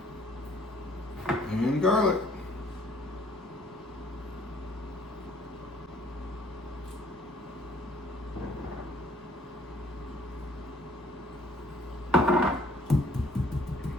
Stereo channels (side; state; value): both; normal; correlation 0.60